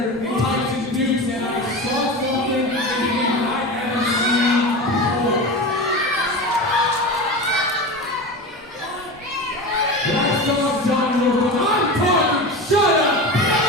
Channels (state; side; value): normal; both; correlation 0.27